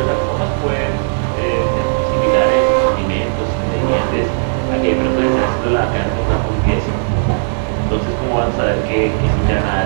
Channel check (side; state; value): left; silent; digital silence